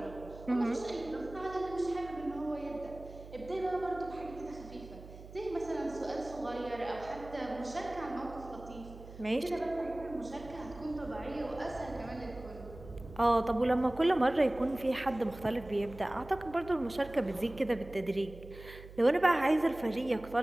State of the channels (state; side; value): noise; right; hum, 16 dB below the sound